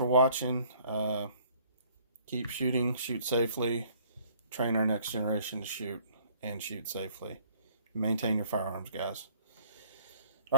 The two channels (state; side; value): inverted; both; correlation -0.57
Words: watching. Keep shooting, shoot safely, train our next generation to shoot and shoot safely. Maintain your firearms, guys. All